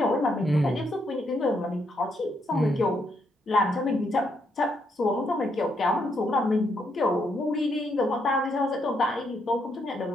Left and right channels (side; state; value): both; normal; correlation 0.76